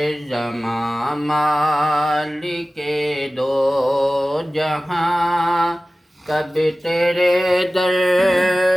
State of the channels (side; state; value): both; normal; correlation 0.97